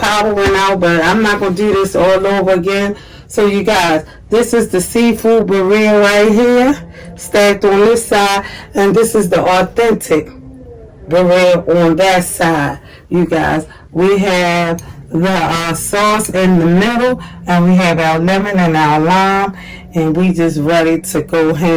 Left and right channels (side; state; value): both; identical; correlation 1.00